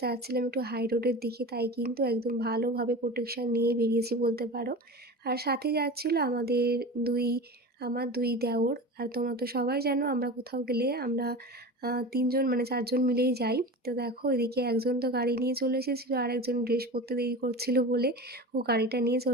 যাচ্ছিলাম একটু হাই রোডের দিকে, তাই কিন্তু একদম ভালোভাবে প্রোটেকশান নিয়ে বেরিয়েছি বলতে পারো। আর সাথে যাচ্ছিল আমার দুই দেওর। আর তোমরা তো সবাই জানো আমরা কোথাও গেলে আমরা তিনজন মানে চারজন মিলেই যাই। তো দেখো এদিকে একজন তো গাড়ি নিয়ে চলে এসেছিলো, আর একজন ড্রেস পরতে দেরি করছিল বলে ও গাড়িটা নিয়ে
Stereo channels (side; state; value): both; normal; correlation 0.30